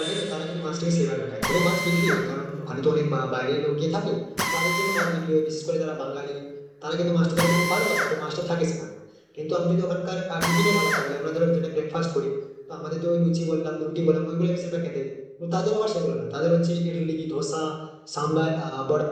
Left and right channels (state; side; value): identical; both; correlation 1.00